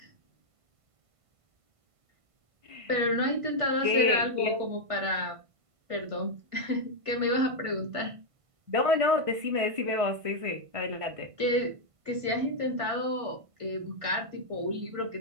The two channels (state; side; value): late; left; 1.5 ms